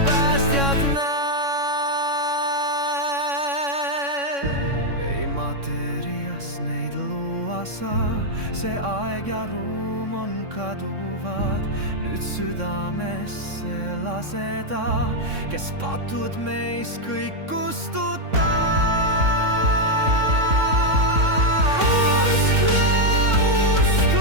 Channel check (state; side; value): late; left; 3.6 ms